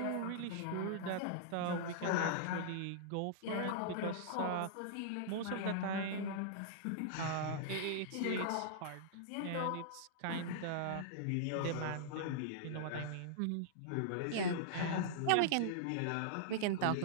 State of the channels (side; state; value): both; different; correlation -0.01